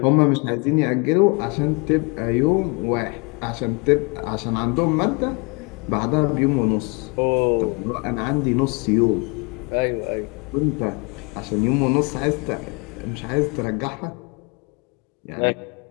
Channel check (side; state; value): right; quieter; 31.8 dB